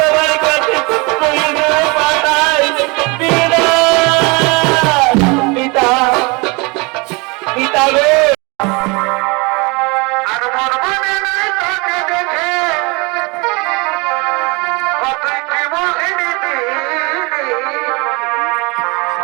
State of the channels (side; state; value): left; quieter; 28.2 dB